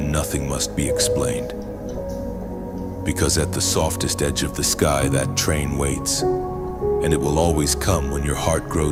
nothing must be explained. Because at the softest edge of the sky, that train waits, and it will always come when your heart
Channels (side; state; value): both; identical; correlation 1.00